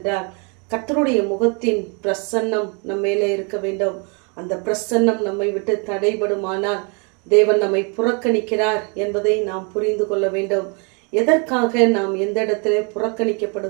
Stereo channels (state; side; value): quieter; left; 35.0 dB